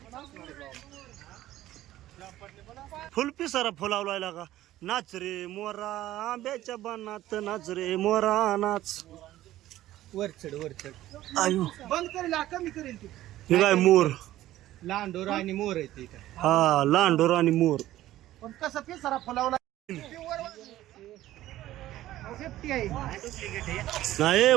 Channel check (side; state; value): left; quieter; 14.6 dB